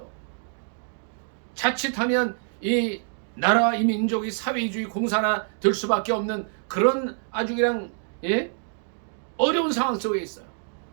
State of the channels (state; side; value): silent; left; 61 dB below the other